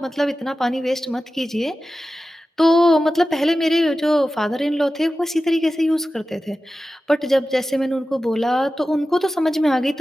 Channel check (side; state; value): both; normal; correlation 0.94